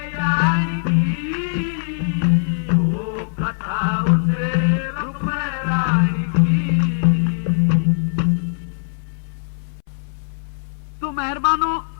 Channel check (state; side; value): silent; right; 65 dB below the other